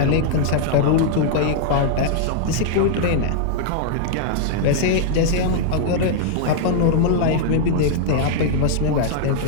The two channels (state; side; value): different; both; correlation -0.01